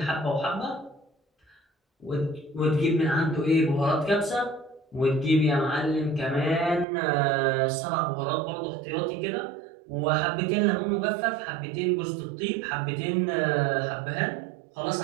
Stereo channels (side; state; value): left; drops out; at 6.9 s